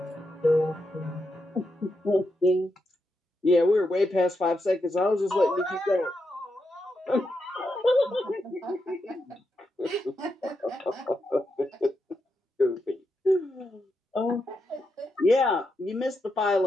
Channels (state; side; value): normal; both; correlation 0.84